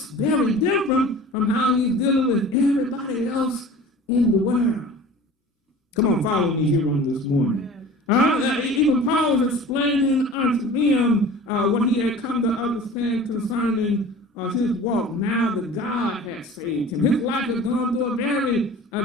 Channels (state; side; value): normal; both; correlation 0.41